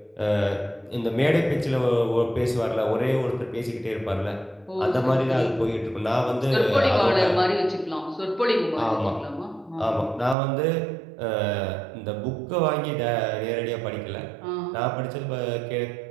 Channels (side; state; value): left; drops out; at 10.4 s